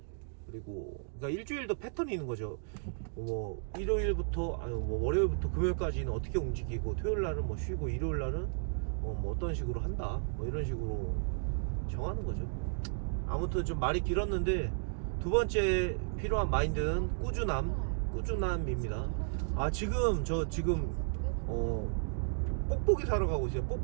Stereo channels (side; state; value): left; silent; digital silence